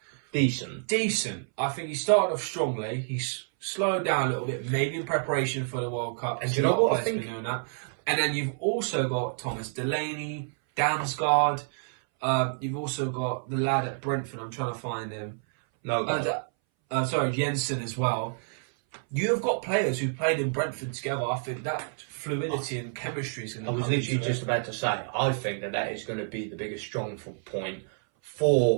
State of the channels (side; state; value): left; silent; 59 dB below the other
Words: Decent. I think he started off strongly. He's slowed down a little bit, maybe in preparation for the World Cup. And you know what? I think... Doing that. And then you've also got Thomas Delaney, Damsgaard. You've also got the lad at Brentford. I'm trying to find him. Jensen as well. You have got players who played in Brentford together. I think that fluidity and chemistry is going to come. I was literally just about to say, I think that is going to be the biggest strong point